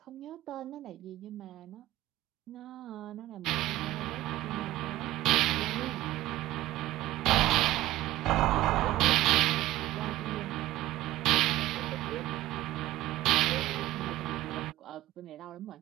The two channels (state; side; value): quieter; left; 16.0 dB